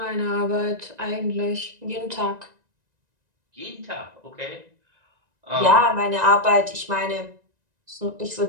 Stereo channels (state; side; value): late; left; 1.9 ms